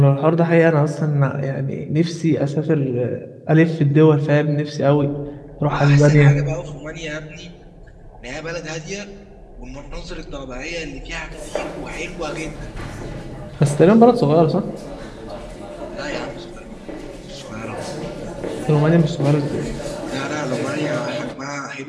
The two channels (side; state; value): both; identical; correlation 1.00